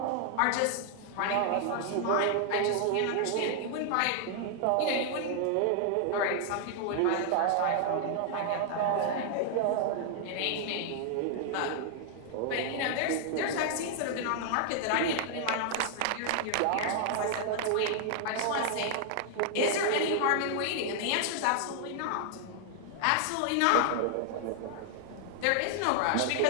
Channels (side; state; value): both; different; correlation 0.00